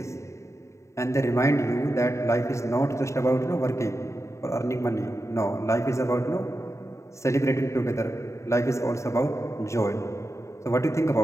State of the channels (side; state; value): right; late; 0.14 ms